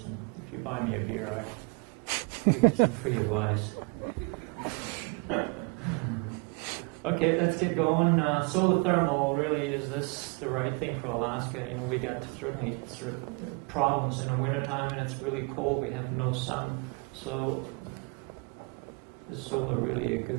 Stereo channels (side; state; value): left; quieter; 31.7 dB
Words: And if you buy me a beer, I give you some free advice. Okay, let's get going. Solar thermal, really, is this the right thing for Alaska? You know, we got certainly problems in the wintertime when it's really cold. We have no sun. So is solar really a